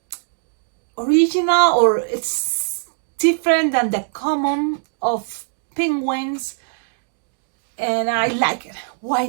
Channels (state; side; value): silent; left; digital silence